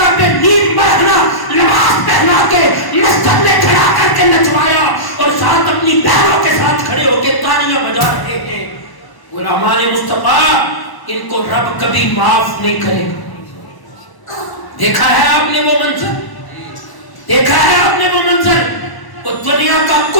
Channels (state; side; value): late; right; 1.0 ms